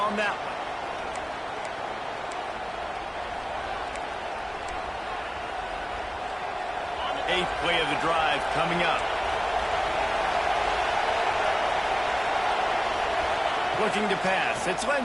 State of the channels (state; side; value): identical; both; correlation 1.00